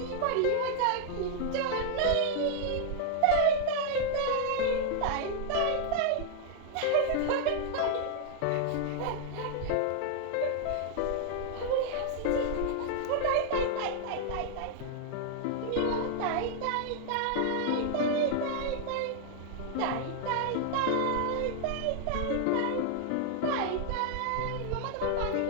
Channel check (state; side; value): different; both; correlation 0.00